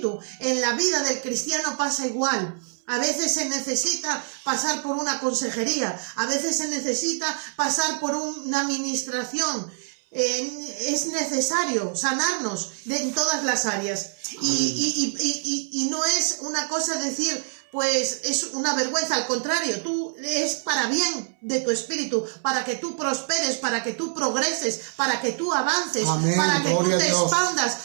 en la vida del cristiano pasa igual. A veces se necesita pasar por una consejería, a veces se necesita pasar por una administración. Es necesario sanarnos en todas las áreas. Y no es una cosa decir, pues es una vergüenza, al contrario, es para bien de tu espíritu, para que tú prosperes, para que tú progreses, para que tú avances. Amén. Para que tú te expandas,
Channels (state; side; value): silent; left; 59 dB below the other